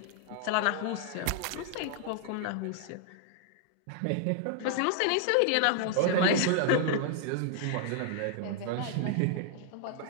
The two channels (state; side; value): different; both; correlation 0.00